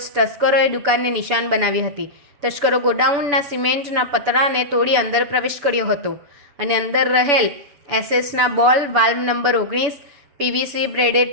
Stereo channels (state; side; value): late; left; 7.0 ms